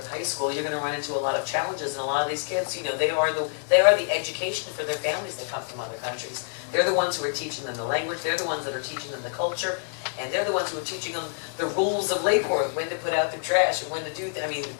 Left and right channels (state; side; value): silent; right; digital silence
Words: High School, you're going to run into a lot of challenges, and a lot of these kids, they are the education for their families that come from other countries. They're the ones who are teaching them the language. They're the ones that are teaching them the culture, and they're the ones who are teaching them the rules of Lake Worth, when to put out their trash and when to do.